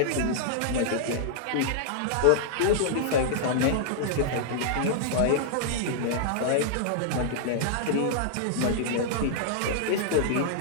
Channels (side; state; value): both; different; correlation -0.01